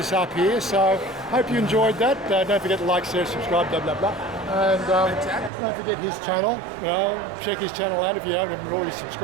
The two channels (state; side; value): drops out; left; at 5.5 s